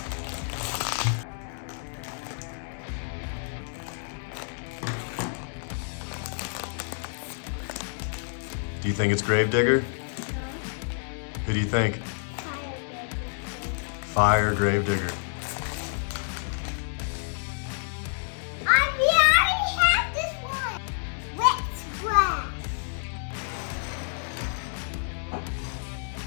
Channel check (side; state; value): right; silent; digital silence